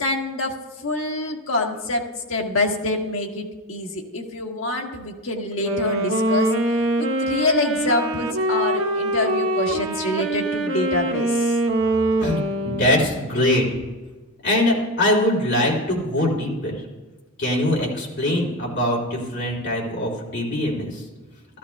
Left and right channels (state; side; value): normal; both; correlation 0.16